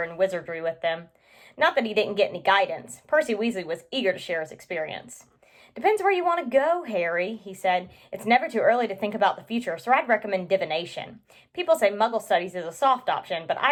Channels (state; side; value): identical; both; correlation 1.00